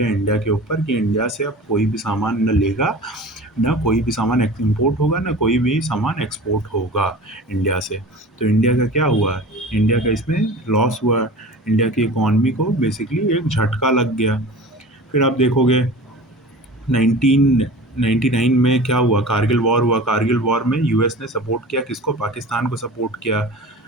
इंडिया के ऊपर कि इंडिया से अब कोई भी सामान न लेगा, ना कोई भी सामान इम्पोर्ट होगा, ना कोई भी सामान एक्सपोर्ट होगा इंडिया से। तो इंडिया का क्या हुआ, इंडिया का इसमें लॉस हुआ। इंडिया की इकॉनमी को बेसिकली एक झटका लग गया। फिर आप देखोगे 1999 में क्या हुआ, कारगिल वॉर हुआ। कारगिल वॉर में यूएस ने सपोर्ट किया किसको, पाकिस्तान को सपोर्ट किया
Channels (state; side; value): normal; both; correlation 0.38